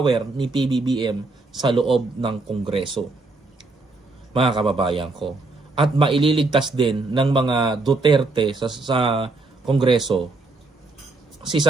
ni PBBM sa loob ng Kongreso. Mga kababayan ko. At maililigtas din ng mga Duterte sa Kongreso si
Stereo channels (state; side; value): quieter; left; 3.4 dB